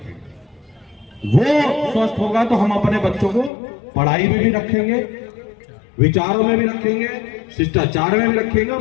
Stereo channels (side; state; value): right; drops out; at 3.5 s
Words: वो स्वस्थ होगा तो हम अपने बच्चों को पढ़ाई में भी रखेंगे, विचारों में भी रखेंगे, शिष्टाचार में भी रखेंगे